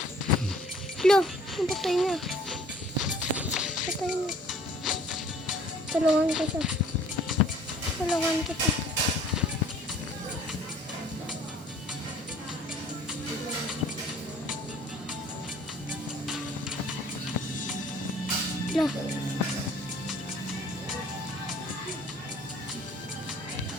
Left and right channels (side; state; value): both; normal; correlation 0.54